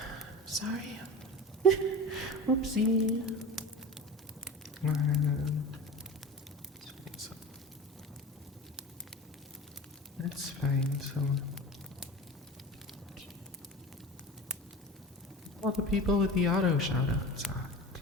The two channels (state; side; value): normal; both; correlation 0.33